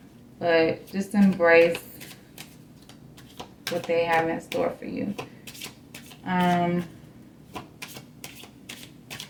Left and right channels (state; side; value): identical; both; correlation 1.00